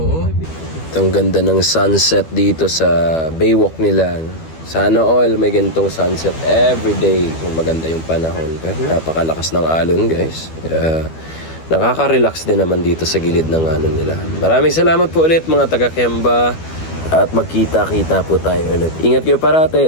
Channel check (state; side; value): late; right; 12 ms